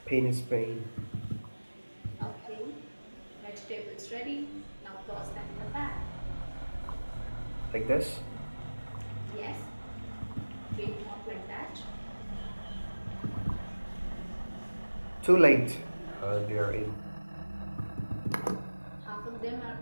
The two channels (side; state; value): both; inverted; correlation -1.00